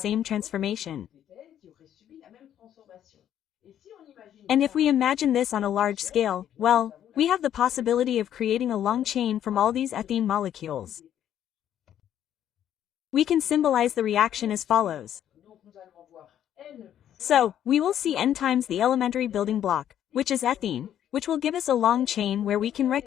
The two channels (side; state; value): right; quieter; 10.5 dB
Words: transformation. And if we imagine this on a large scale, well, we have the possibility of creating a long chain from all these ethene molecules. We can symbolize the reaction as follows. So, we will see N times the elementary building block, which is ethene, which will give us a long chain where we can